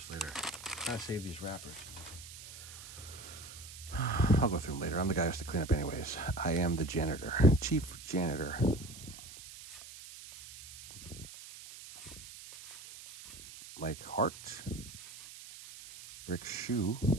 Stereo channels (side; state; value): right; noise; hiss, 14 dB below the sound